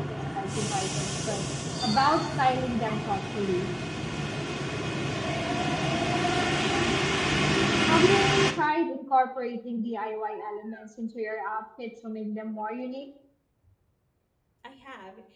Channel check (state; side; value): identical; both; correlation 1.00